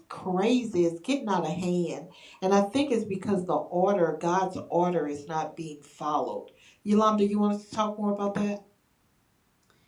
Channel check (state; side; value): identical; both; correlation 1.00